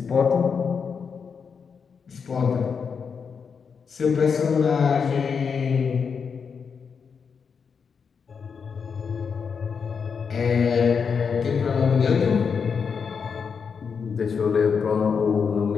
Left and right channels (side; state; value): right; quieter; 6.1 dB